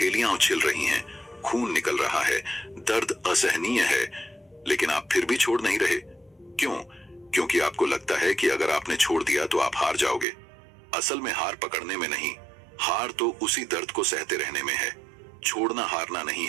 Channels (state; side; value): drops out; left; at 10.2 s